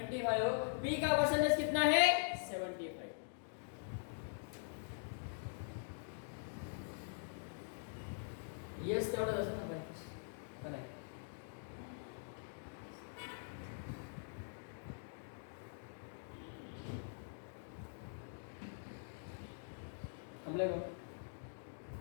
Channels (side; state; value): right; silent; digital silence